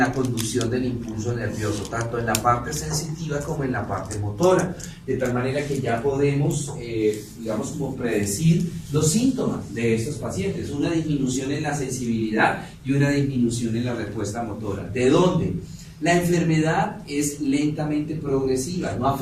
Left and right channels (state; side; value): identical; both; correlation 1.00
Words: conducción del impulso nervioso, tanto en la parte sensitiva como en la parte motora, de tal manera que ya podemos, digamos, como predecir los síntomas de estos pacientes, una disminución en la sensibilidad y una disminución en la respuesta motora. ¿De dónde? La enfermedad es lentamente progresiva, no